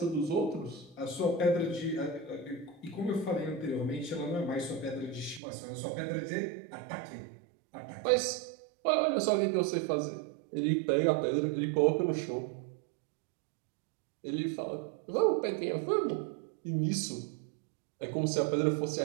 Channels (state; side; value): drops out; left; at 5.4 s